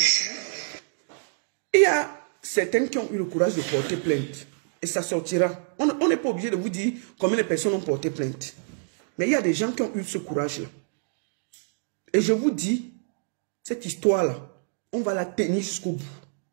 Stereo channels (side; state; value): left; silent; digital silence